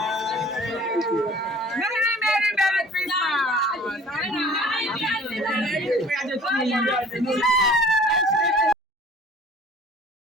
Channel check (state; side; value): normal; both; correlation 0.50